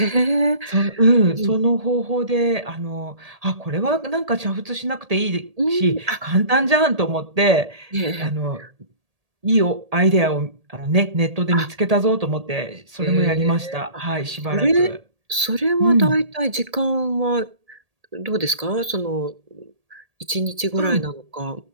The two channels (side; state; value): left; late; 1.8 ms